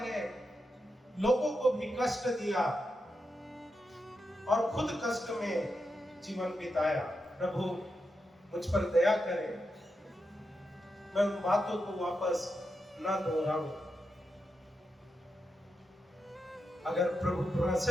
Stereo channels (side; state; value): both; normal; correlation 0.87